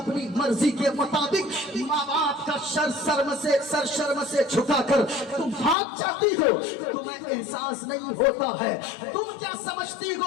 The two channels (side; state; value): right; drops out; at 5.8 s